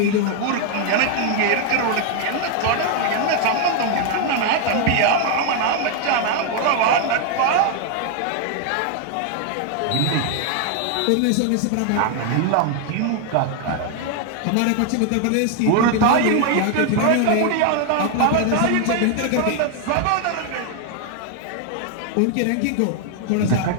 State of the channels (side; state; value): both; different; correlation 0.00